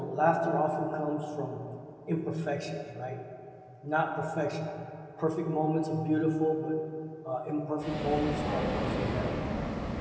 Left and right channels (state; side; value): identical; both; correlation 1.00